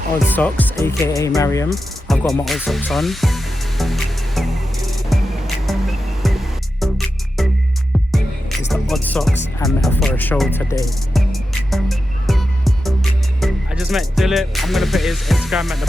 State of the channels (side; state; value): both; normal; correlation 0.90